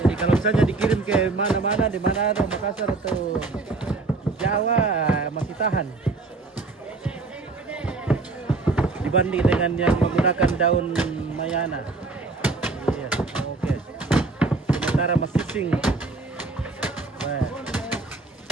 Jadi kalau misalnya dikirim ke mana-mana, di Manado, Makassar atau Jawa masih tahan. Dibanding dengan yang menggunakan daun mayana. Iya, oke. Sementara masih sing,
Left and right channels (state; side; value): quieter; left; 3.6 dB